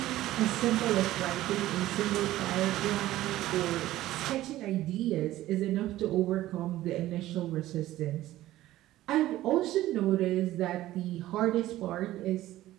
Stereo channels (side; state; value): left; quieter; 15.2 dB